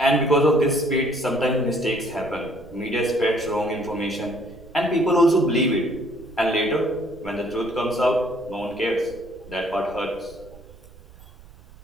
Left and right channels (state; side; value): noise; right; rumble, 22 dB below the sound